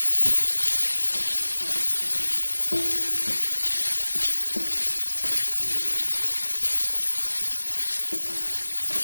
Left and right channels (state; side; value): inverted; both; correlation -1.00